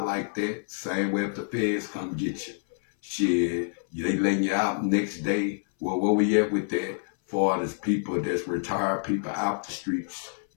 like that. Same way if the feds come get you. Shit, they letting you out next day. Well, where we at with that? For as people that's retired people out the streets,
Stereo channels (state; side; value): silent; right; 60 dB below the other